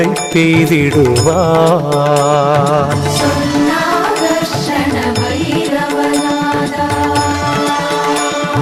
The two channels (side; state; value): both; identical; correlation 1.00